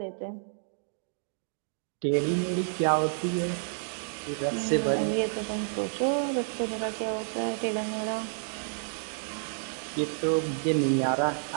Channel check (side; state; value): left; silent; digital silence